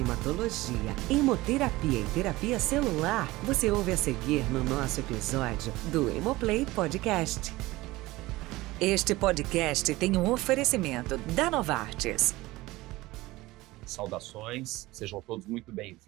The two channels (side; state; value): left; quieter; 19.4 dB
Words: hemoterapia e terapia celular, você ouve a seguir no nosso episódio do Hemoplay Podcast. Este podcast tem um oferecimento da Novartis. Saudações, sejam todos muito